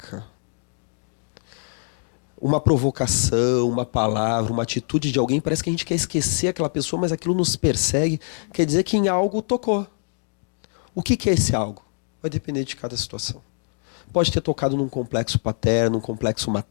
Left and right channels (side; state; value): right; silent; 63 dB below the other